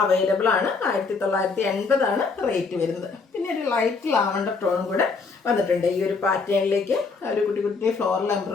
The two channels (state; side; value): quieter; right; 4.6 dB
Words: അവൈലബിൾ ആണ്. 1980 റേറ്റ് വരുന്നത്. പിന്നെ ഒരു ലൈറ്റ് ലാവണ്ടർ ടോൺ കൂടെ വന്നിട്ടുണ്ട് ഈ ഒരു പാറ്റേണിലേക്ക്. ഒരു കുട്ടി കുട്ടി ഫ്ലോറൽ